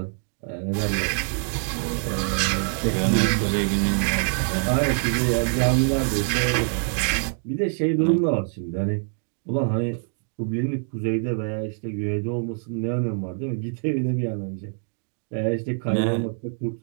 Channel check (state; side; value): silent; left; 62 dB below the other